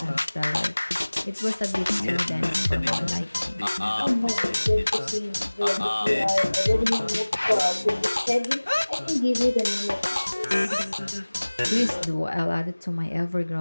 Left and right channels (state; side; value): inverted; both; correlation -1.00